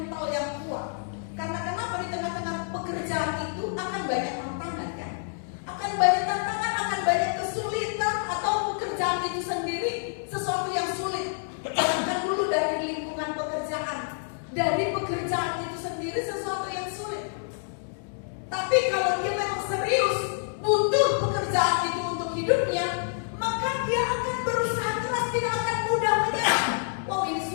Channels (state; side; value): silent; right; digital silence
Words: yang kuat. Karena kenapa? Di tengah-tengah pekerjaan itu akan banyak tantangan, kan? Akan banyak tantangan, akan banyak kesulitan, atau pekerjaan itu sendiri sesuatu yang sulit. Jangan dulu dari lingkungan pekerjaan, dari pekerjaan itu sendiri sesuatu yang sulit. Tapi kalau dia memang serius butuh pekerjaan itu untuk hidupnya, maka dia akan berusaha keras, tidak akan mudah menyerah. Wow, ini